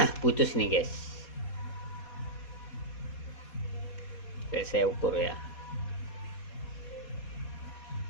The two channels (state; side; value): late; right; 4.2 ms